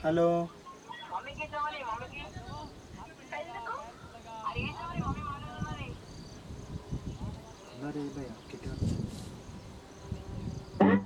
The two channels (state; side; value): identical; both; correlation 1.00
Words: హలో అరే భయ్యా కిట్టుగా.